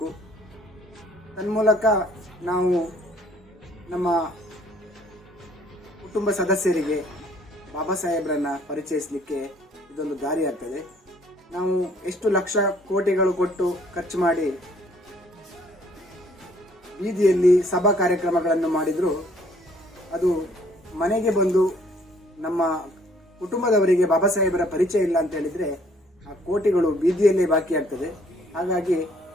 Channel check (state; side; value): normal; both; correlation 0.61